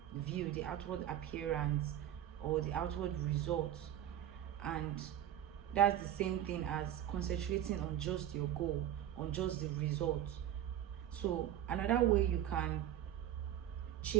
view, the outward appearance, or the outward results. And that's the same thing as concentrating on just your goal, on just the result. So another way you can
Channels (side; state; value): left; quieter; 11.4 dB